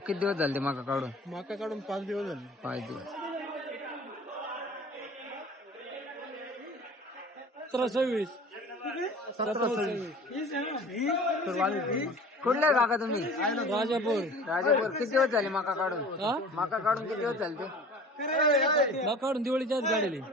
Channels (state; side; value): normal; both; correlation 0.43